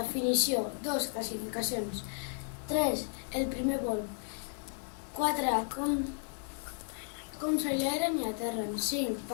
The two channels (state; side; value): silent; right; 55 dB below the other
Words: 2. Classificacions. 3. El primer vol. 4. Com s'aileren i aterren. 5.